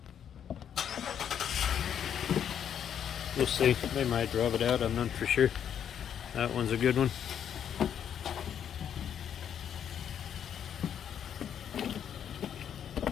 We'll see. They might drop it out. I'm not for sure. That one's a good one.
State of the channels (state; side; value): quieter; right; 8.9 dB